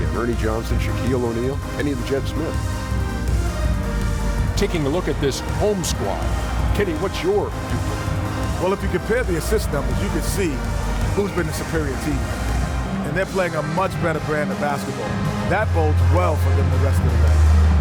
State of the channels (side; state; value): both; identical; correlation 1.00